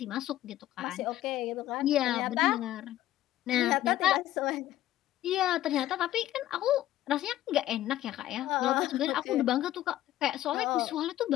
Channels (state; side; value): quieter; right; 13.9 dB